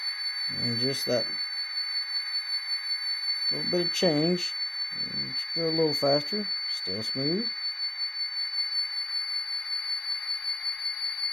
And just that little bit of change. Just go a little faster, still smooth.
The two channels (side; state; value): both; normal; correlation 0.95